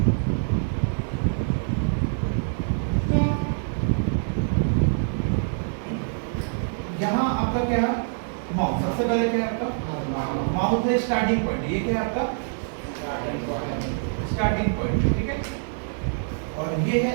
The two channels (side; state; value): left; silent; digital silence